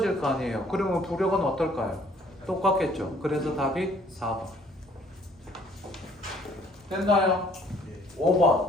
거 아니에요. 그러면 부력은 어떨까요? 똑같겠죠. 그래서 답이 4번. 됐나요?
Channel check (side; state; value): both; normal; correlation 0.59